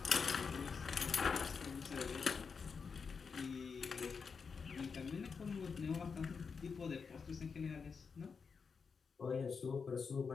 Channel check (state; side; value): quieter; right; 5.5 dB